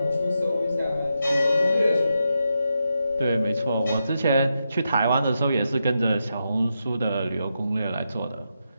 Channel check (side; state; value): both; inverted; correlation -0.85